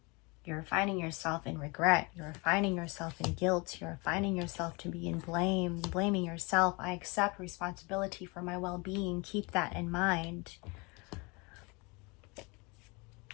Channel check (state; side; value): quieter; right; 28.3 dB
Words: you're finding yourself in regret. You're finding yourself in guilt. You're finding yourself to be in blame, blaming yourself. I accept responsibility for my well-being. Keep that in mind.